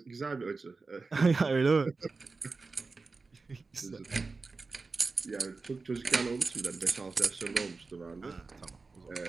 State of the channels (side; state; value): left; quieter; 4.0 dB